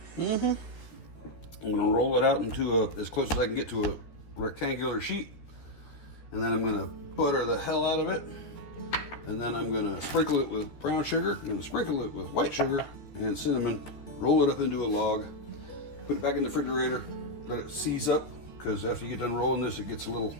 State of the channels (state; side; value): late; right; 14 ms